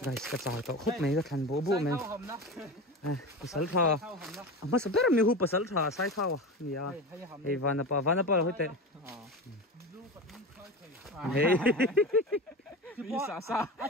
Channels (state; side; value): normal; both; correlation 0.27